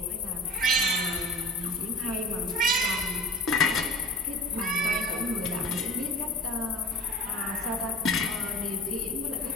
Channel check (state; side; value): normal; both; correlation 0.37